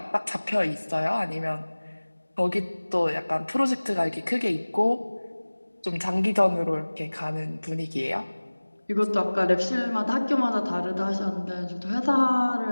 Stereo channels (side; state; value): both; inverted; correlation -1.00